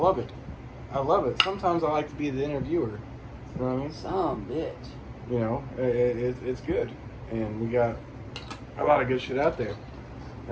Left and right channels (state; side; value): identical; both; correlation 1.00